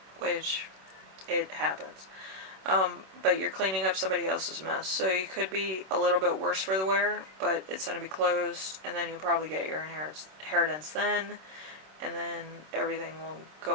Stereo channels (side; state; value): left; late; 26 ms